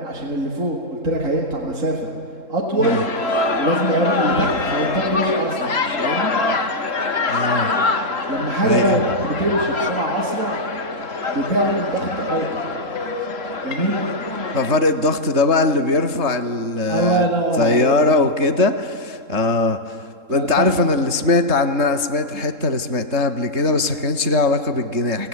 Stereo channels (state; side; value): late; left; 3.7 ms